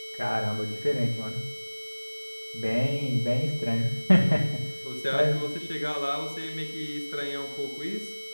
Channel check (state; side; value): inverted; both; correlation -1.00